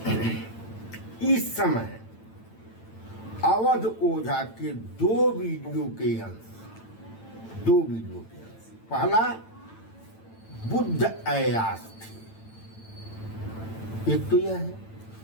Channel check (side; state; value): right; late; 9.0 ms